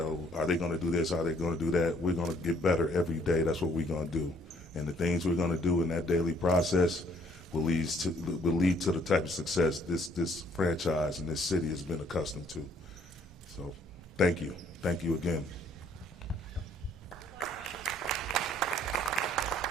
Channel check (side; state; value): both; normal; correlation 0.62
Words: are they going to do this? Are they going to do that? We're going to get better every day. That's what we're going to do. And the things we're going to do in that daily process will lead to the type of success this franchise and this city has been accustomed to. So thank you. Thank you again.